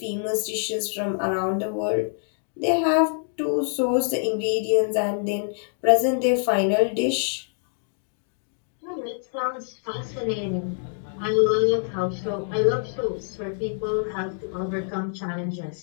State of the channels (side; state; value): right; silent; digital silence